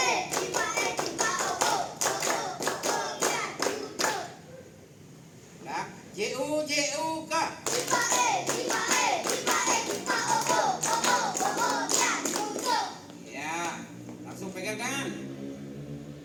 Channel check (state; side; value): identical; both; correlation 1.00